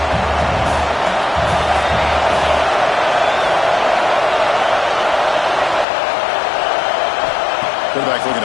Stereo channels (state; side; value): drops out; right; at 5.9 s